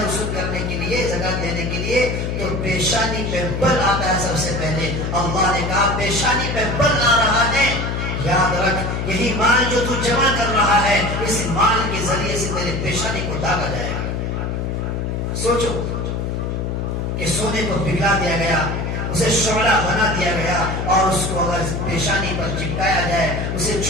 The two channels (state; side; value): noise; left; hum, 2 dB below the sound